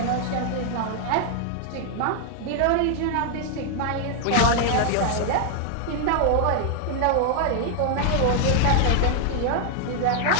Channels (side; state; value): both; different; correlation 0.00